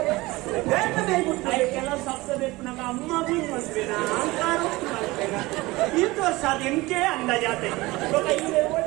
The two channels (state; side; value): quieter; left; 20.9 dB